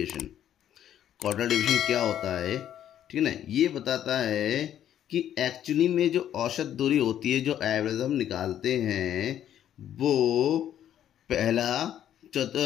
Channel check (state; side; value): quieter; right; 10.7 dB